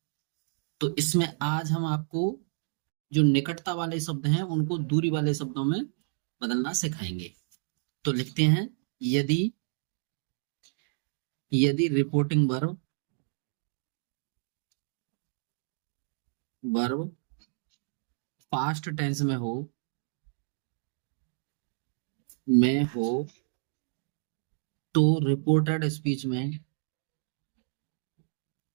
तो इसमें आज हम आपको जो निकटता वाले शब्द हैं उनको दूरी वाले शब्दों में बदलना सिखाएंगे। तो लिखते हैं, यदि यदि रिपोर्टिंग वर्ब पास्ट टेंस में हो तो रिपोर्टेड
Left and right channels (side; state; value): left; silent; digital silence